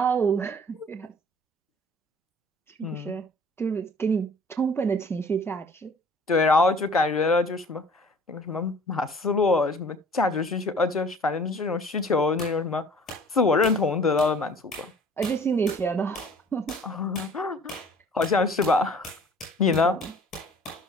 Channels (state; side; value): normal; both; correlation 0.50